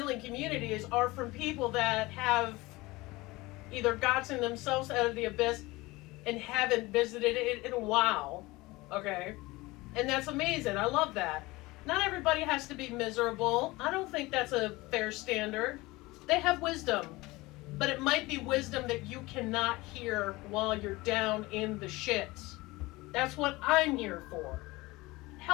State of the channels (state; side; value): quieter; right; 21.3 dB